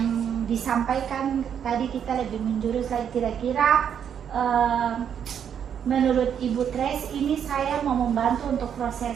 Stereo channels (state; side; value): quieter; left; 8.4 dB